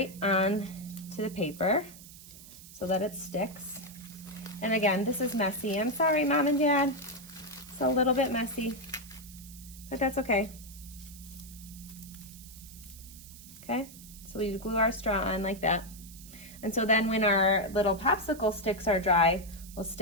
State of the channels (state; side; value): noise; right; hiss, 18 dB below the sound